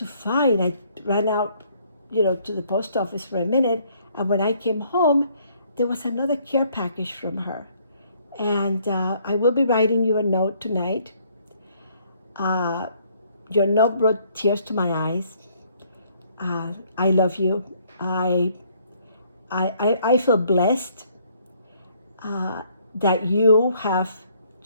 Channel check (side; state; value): both; inverted; correlation -0.65